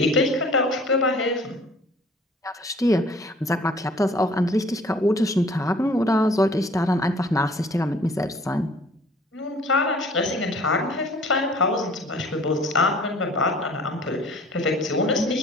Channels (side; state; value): both; normal; correlation 0.52